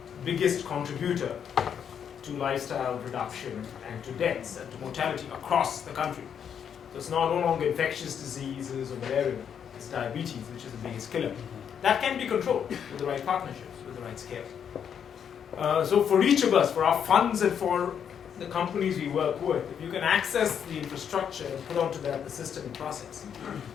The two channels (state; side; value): quieter; right; 8.1 dB